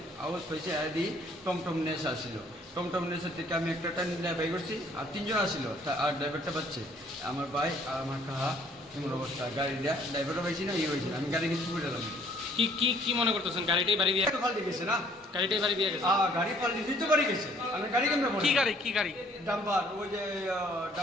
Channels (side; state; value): both; normal; correlation 0.60